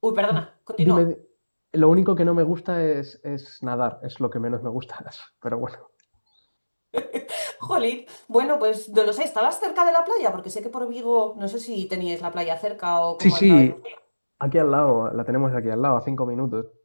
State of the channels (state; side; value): inverted; both; correlation -1.00